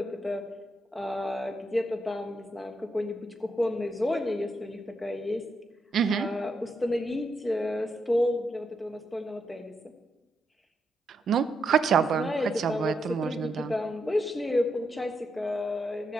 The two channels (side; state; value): both; normal; correlation 0.81